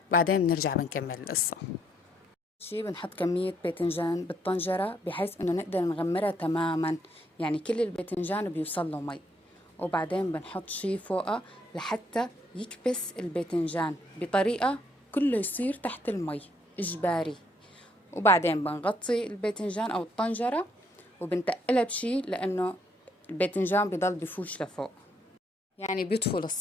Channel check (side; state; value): both; normal; correlation 0.71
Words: وبعدين بنرجع بنكمل القصة. شي بنحط كمية باذنجان بالطنجرة بحيث انه نقدر نغمرها تماما، يعني كل الباذنجان بيوصل له مي. وبعدين بنحط شي فوقها لحتى يكبس الباذنجان بطريقة كله يصير تحت المي إجباري. وبعدين بنغطي الباذنجان أو الطنجرة وبنتقلها بشي، لأنه الباذنجان بضل بفوش لفوق، يعني بيطفو